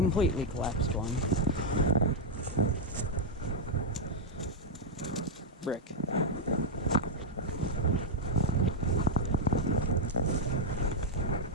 collapsed one. Brick.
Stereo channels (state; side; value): normal; both; correlation -0.02